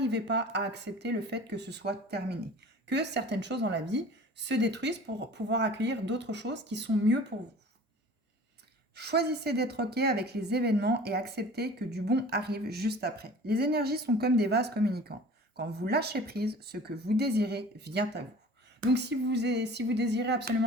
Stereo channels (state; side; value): normal; both; correlation 0.43